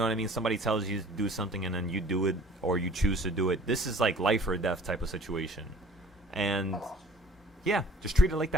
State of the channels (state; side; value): normal; both; correlation 0.52